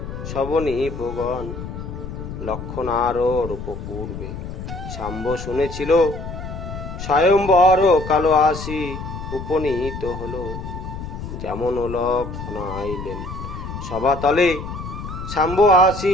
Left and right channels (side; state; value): left; noise; rumble, 8 dB below the sound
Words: সবনিপগণ। লক্ষণার রূপ পূর্বে শাম্ব শুনেছিল, স্বয়ম্বর কালো আসি উপনীত হল। যেমন লক্ষণা আইলেন সভাতলে, শাম্ব আসি